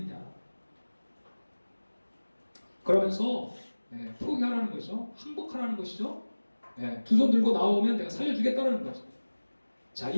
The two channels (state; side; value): inverted; both; correlation -1.00